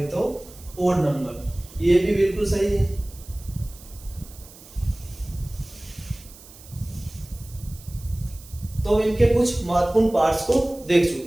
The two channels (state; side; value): noise; right; hiss, 20 dB below the sound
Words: तो ओड नंबर, ये भी बिल्कुल सही है। तो इनके कुछ महत्वपूर्ण पार्ट्स को देख